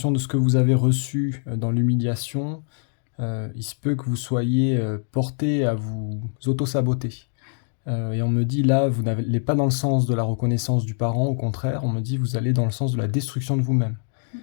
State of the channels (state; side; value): silent; right; digital silence